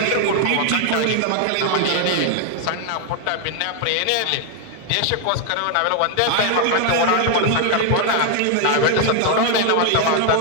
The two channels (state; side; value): different; both; correlation 0.00